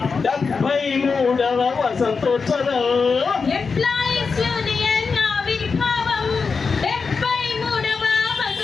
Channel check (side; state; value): right; quieter; 5.0 dB